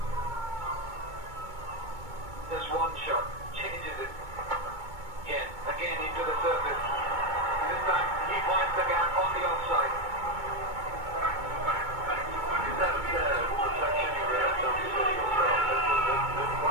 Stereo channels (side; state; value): left; late; 2.2 ms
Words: Just one shot, changes it. Again into the surface. This time he finds the gap on the offside. Is that reflection you realize on the city yourself? That